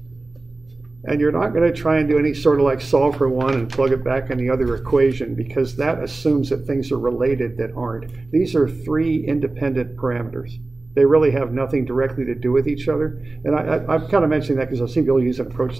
And you're not going to try and do any sort of like solve for one and plug it back in the other equation, because that assumes that things are related that aren't. These are three independent parameters. They really have nothing directly to do with each other. And I'm kind of mentioning that because I've seen people use an approach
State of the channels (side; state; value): left; quieter; 3.2 dB